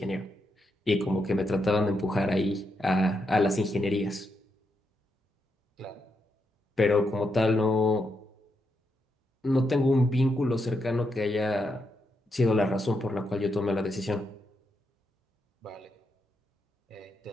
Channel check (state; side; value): normal; both; correlation 0.82